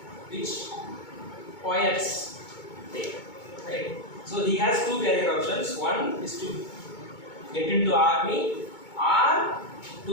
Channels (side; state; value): right; late; 2.2 ms